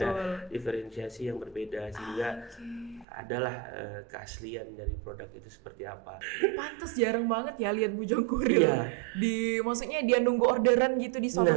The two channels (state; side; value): drops out; left; at 3.1 s